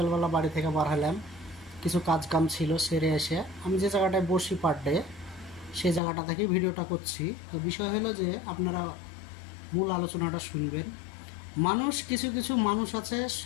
বাড়ি থেকে বার হলাম, কিছু কাজ কাম ছিল, সেরে এসে আমি যে জায়গাটায় বসি পার ডে সেই জায়গাটা থেকে ভিডিওটা করছি। তো বিষয় হলো যে আপনারা মূল আলোচনাটা শুনবেন। কিছু কিছু মানুষ আছে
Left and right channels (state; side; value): drops out; right; at 6.0 s